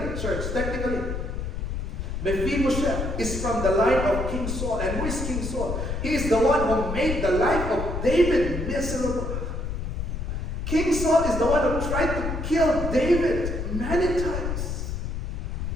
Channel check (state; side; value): noise; left; rumble, 3 dB below the sound